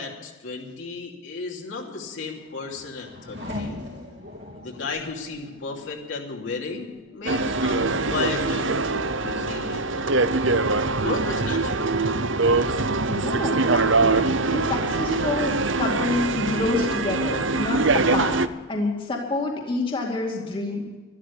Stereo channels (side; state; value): both; normal; correlation 0.04